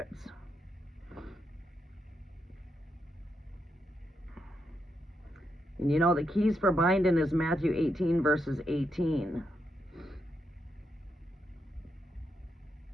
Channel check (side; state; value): both; normal; correlation 0.81